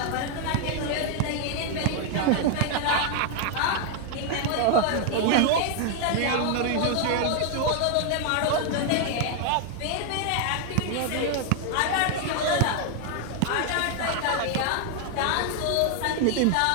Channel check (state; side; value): different; both; correlation 0.01